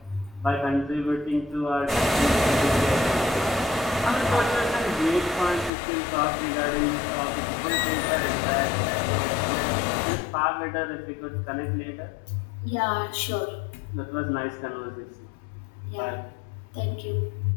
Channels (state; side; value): drops out; right; at 5.7 s